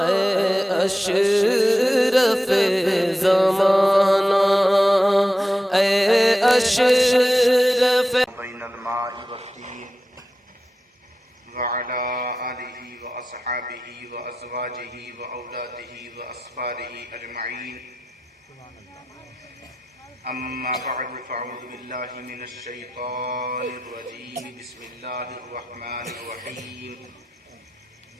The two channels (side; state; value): both; normal; correlation 0.91